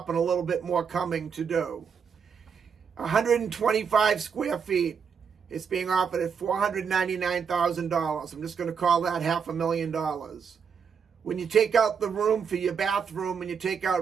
and a little bit more coming to do. 125 square feet. It's being offered at $499,000. I'm just going to call that $500,000. When you take out the room for your bathroom and you take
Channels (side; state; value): left; quieter; 6.6 dB